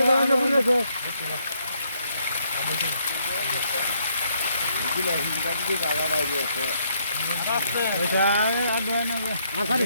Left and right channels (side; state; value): both; inverted; correlation -0.72